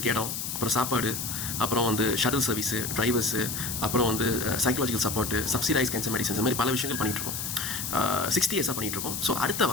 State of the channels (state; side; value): noise; left; hiss, 4 dB below the sound